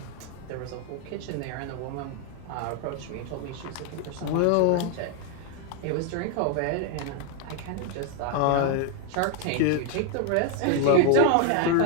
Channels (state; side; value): different; both; correlation 0.00